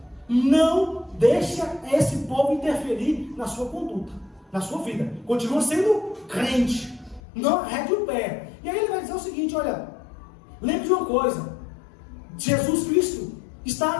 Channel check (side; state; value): right; drops out; at 7.2 s